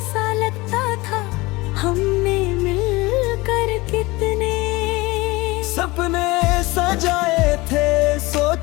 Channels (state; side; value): quieter; right; 22.1 dB